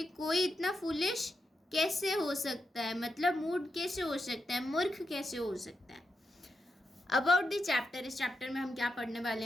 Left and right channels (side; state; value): both; normal; correlation 0.86